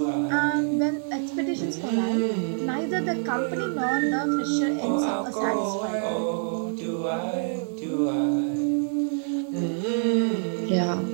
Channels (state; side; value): silent; left; digital silence